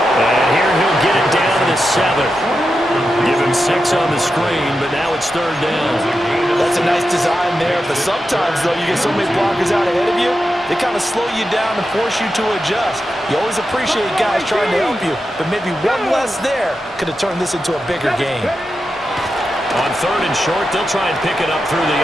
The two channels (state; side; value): normal; both; correlation 0.89